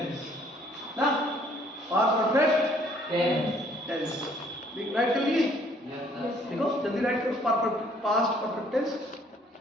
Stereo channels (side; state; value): both; normal; correlation 0.61